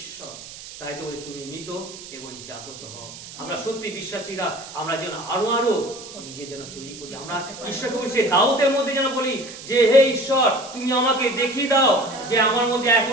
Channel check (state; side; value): noise; right; hiss, 14 dB below the sound